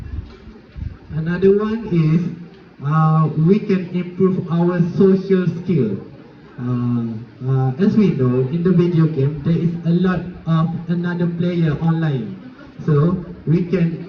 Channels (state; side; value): identical; both; correlation 1.00